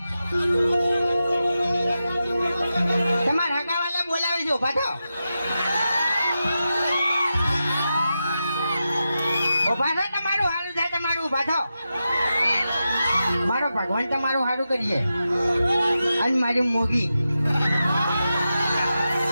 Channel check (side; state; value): both; inverted; correlation -0.90